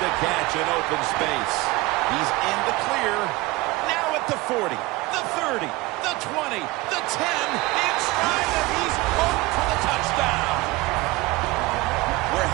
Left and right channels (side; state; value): left; quieter; 21.0 dB